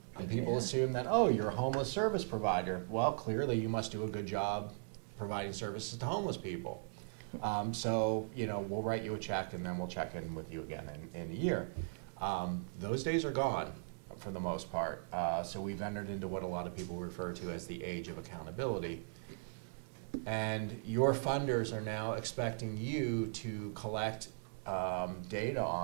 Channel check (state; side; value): silent; left; digital silence